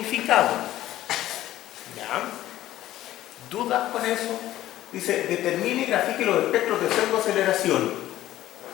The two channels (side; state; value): right; quieter; 14.2 dB